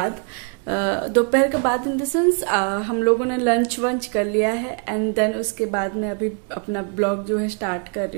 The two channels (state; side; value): quieter; left; 39.3 dB